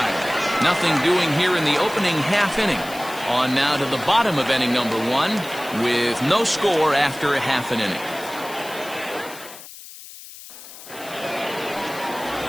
Nothing doing here in the opening half inning. On now to the bottom of inning number 1 with no score after a half an inning.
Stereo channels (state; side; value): noise; left; hiss, 16 dB below the sound